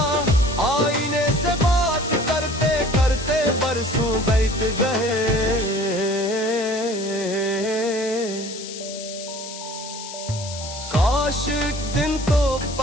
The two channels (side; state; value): left; noise; hiss, 11 dB below the sound